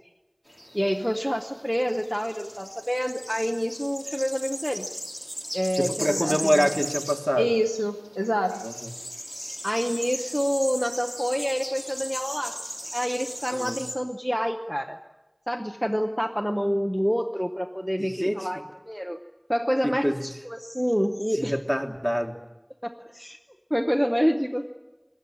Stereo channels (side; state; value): both; identical; correlation 1.00